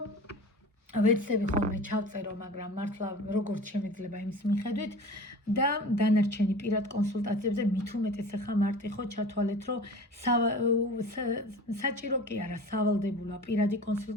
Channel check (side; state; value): both; normal; correlation 0.39